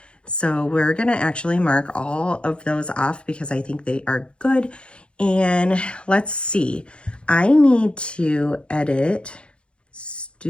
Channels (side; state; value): right; late; 0.057 ms